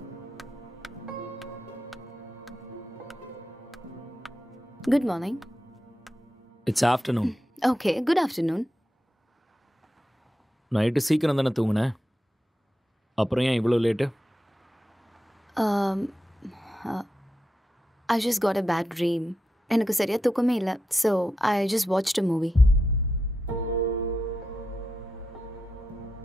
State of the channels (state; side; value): normal; both; correlation 0.87